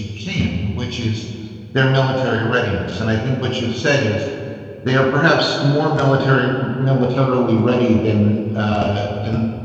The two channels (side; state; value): both; identical; correlation 1.00